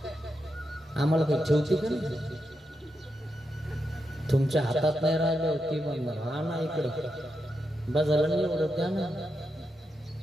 आम्हाला काही ठेवते का नाही? तुमच्या हातात नाही राहिलं ती म्हणणार हा ना इकडं बाजारला नाही एवढं द्या ना,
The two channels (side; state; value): both; normal; correlation 0.85